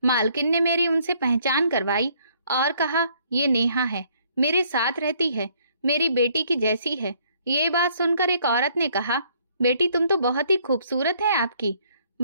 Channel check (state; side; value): inverted; both; correlation -0.65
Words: मालकिन ने मेरी उनसे पहचान करवाई और कहा, ये नेहा है, मेरे साथ रहती है, मेरी बेटी की जैसी है। ये बात सुनकर एक औरत ने कहा, बेटी तुम तो बहुत ही खूबसूरत है आपकी।